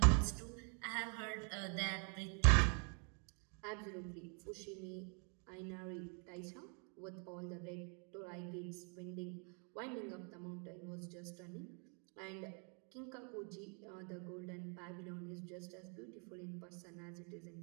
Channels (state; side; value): quieter; left; 38.5 dB